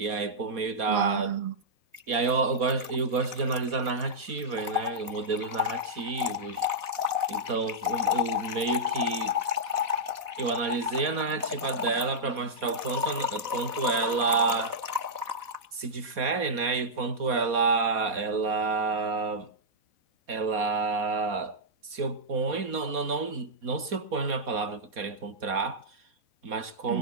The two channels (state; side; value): late; left; 4.2 ms